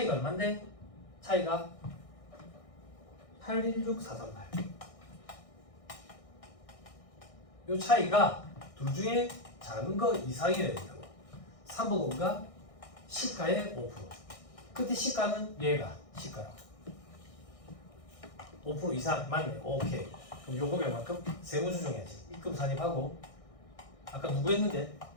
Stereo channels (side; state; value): right; late; 1.6 ms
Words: 얼마인데? 차이가 816438. 요 차이가 둘 중에 작은 거 이상이어야 된다고. 3번 5가 시가의 5%. 그때 시가는 얘가 시가라고. 5% 이상 맞네. 오케이. 그럼 요거 몇만큼 세무조정해야지. 입금 산입하고 아까 누구 했는데?